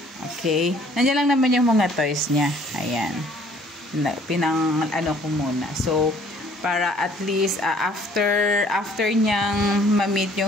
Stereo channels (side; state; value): both; normal; correlation 0.58